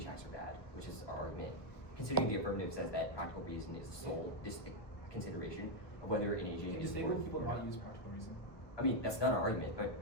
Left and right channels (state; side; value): late; right; 1.3 ms